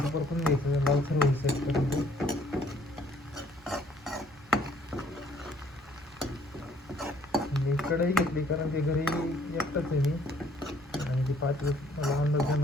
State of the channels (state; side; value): normal; both; correlation 0.62